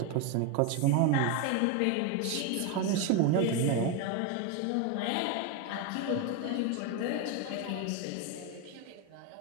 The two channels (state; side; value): different; both; correlation 0.02